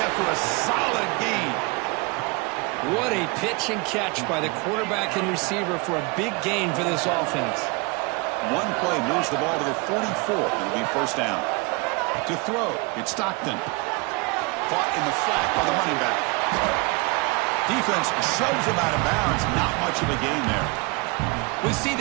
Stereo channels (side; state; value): left; quieter; 28.1 dB